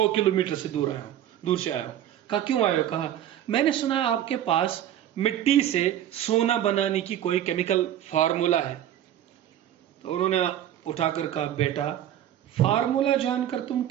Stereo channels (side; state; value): left; quieter; 11.3 dB